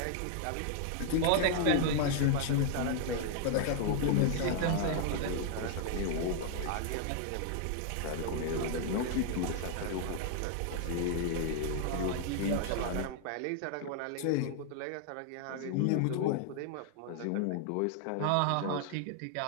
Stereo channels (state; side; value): different; both; correlation 0.00